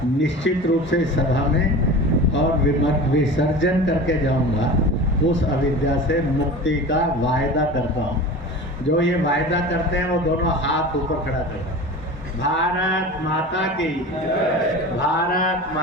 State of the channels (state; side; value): normal; both; correlation 0.34